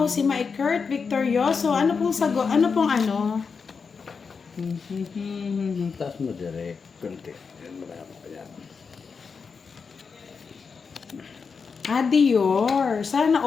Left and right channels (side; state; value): right; quieter; 5.4 dB